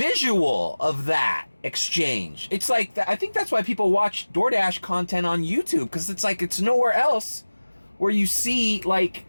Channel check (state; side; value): inverted; both; correlation -1.00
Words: of that exchange. It's like, I think that's why people watch DoorDash content on YouTube, because it's like, it's nowhere else where you see like